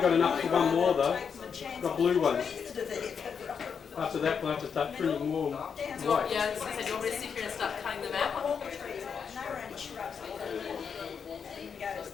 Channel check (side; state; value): right; quieter; 6.6 dB